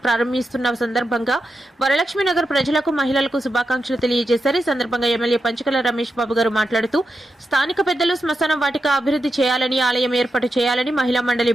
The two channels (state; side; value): normal; both; correlation 0.88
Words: ప్రారంభిస్తున్న సందర్భంగా వరలక్ష్మి నగర్ ప్రజలకు, మహిళలకు శుభాకాంక్షలు తెలియజేశారు. ఈ సందర్భంగా ఎమ్మెల్యే పంచకల రమేష్ బాబు గారు మాట్లాడుతూ స్థానిక పెద్దలు శ్మశాన వాటిక అభివృద్ధి చేయాలని, ఆలయం ఏర్పాటు చేయాలని, మహిళా మండలి